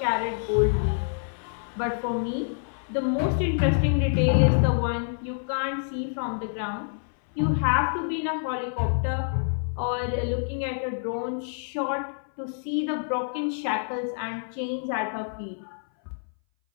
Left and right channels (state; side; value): silent; right; 59 dB below the other